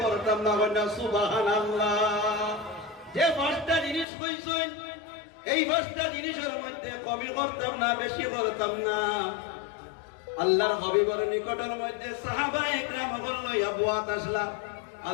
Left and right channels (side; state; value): right; drops out; at 4.0 s